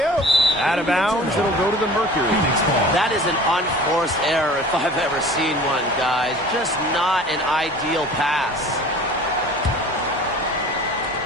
Out of bounds, it'll go to the Mercury. That is an unforced error if I've ever seen one, guys. Just not an ideal pass.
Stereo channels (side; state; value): both; normal; correlation 0.43